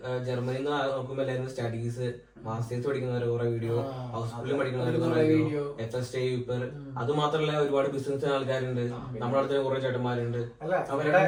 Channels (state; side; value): identical; both; correlation 1.00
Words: ജർമ്മനിയിൽ നിന്ന് നോക്കുമ്പോ എല്ലാരും സ്റ്റഡീസ്, മാസ്റ്റേഴ്സ് പഠിക്കുന്നവർ കുറെ വീഡിയോ, ഹൗസ്ഫുള്ളിൽ പഠിക്കുന്നവർ കുറെ വീഡിയോ, FST യൂപ്പർ, അത് മാത്രമല്ല ഒരുപാട് ബിസിനസ് ആൾക്കാരുണ്ട്. നമ്മുടെ അടുത്ത് കുറെ ചേട്ടന്മാരുണ്ട്.